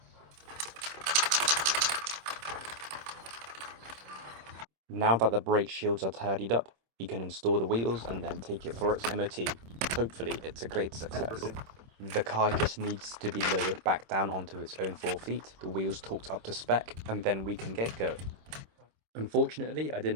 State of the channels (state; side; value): late; left; 26 ms